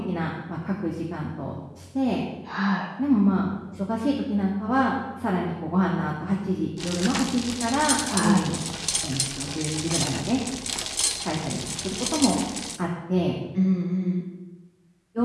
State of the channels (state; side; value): identical; both; correlation 1.00